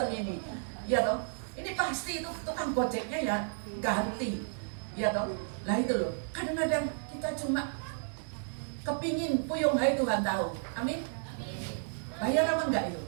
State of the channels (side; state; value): left; silent; 56 dB below the other